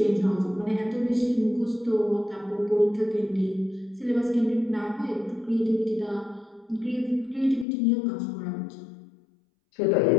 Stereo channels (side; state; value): right; drops out; at 7.7 s